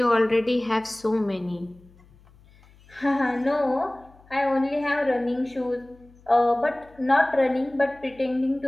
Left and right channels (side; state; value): left; noise; hum, 27 dB below the sound